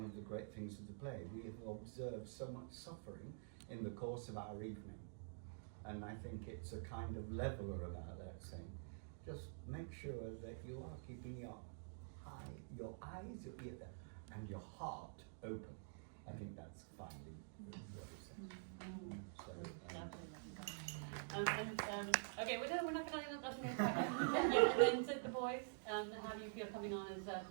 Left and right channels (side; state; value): left; silent; digital silence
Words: of the great things of the play. We have observed so much suffering in the course of our evening. And I think it's a kind of leveler about that, saying, just make sure that you are keeping your eyes, your ear, and your heart open. I think that's finally what it says. Okay, we're not going to and then to the boys, how do you feel coming on as